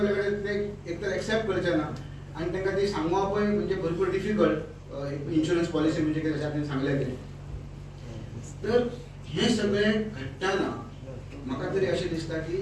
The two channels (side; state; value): both; identical; correlation 1.00